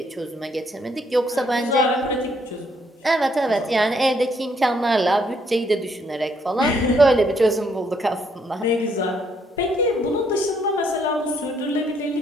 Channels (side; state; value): both; normal; correlation 0.70